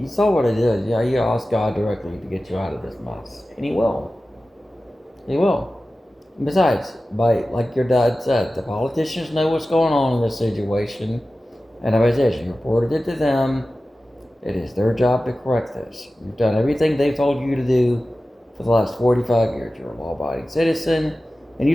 saw what I did. Yeah, you asked God directly to get you out of this mess, and He will. He will. And besides, like your dad said, the politicians know what's going on in this situation, and as I said, you reported it to them. It is their job to correct this. You've done everything they've told you to do for the last 45 years. You're a law-abiding citizen, and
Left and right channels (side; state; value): both; normal; correlation 0.95